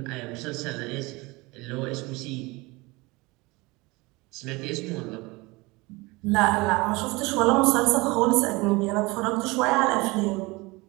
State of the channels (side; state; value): left; quieter; 23.8 dB